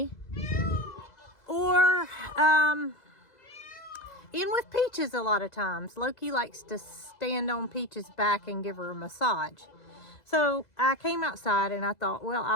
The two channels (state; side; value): late; right; 2.0 ms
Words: or in with Peaches a lot of times. Loki likes to stand on Peaches' back and give her a massage. So I came outside and I thought, well,